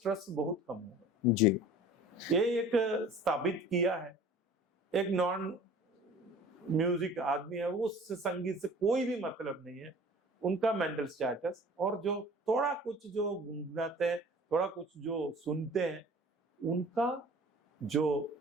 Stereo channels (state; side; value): normal; both; correlation 0.45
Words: बहुत कम होगा। जी, ये एक स्थापित किया है। एक नॉन म्यूजिक आदमी है, वो संगीत से कोई भी मतलब नहीं है, उनका मेंटल स्टेटस, और जो थोड़ा कुछ जो गुनगुनाते हैं, थोड़ा कुछ जो सुनते हैं, उनका जो